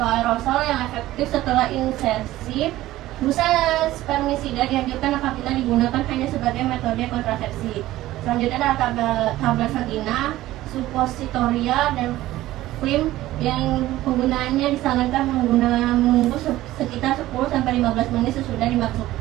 aerosol yang efektif setelah insersi. Busa spermisida dianjurkan apabila digunakan hanya sebagai metode kontrasepsi. Selanjutnya adalah tablet vagina, suppositoria, dan krim yang penggunaannya disarankan menunggu sekitar 10-15 menit sesudah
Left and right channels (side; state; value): left; quieter; 15.8 dB